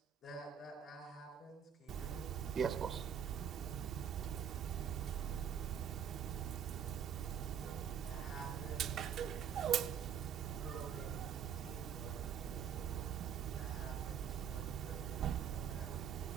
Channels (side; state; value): left; quieter; 8.3 dB